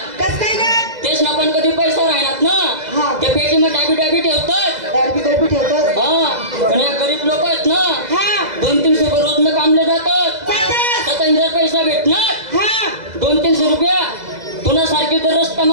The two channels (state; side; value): late; left; 2.0 ms